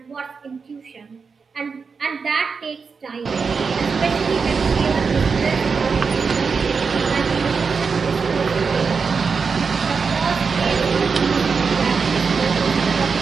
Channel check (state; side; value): quieter; left; 5.3 dB